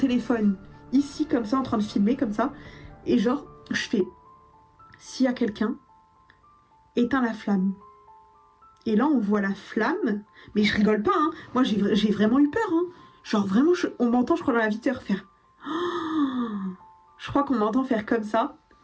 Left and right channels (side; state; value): both; identical; correlation 1.00